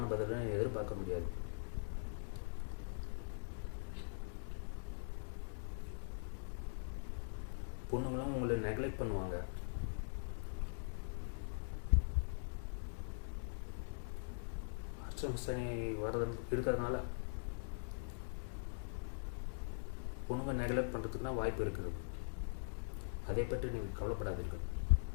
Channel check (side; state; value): right; silent; digital silence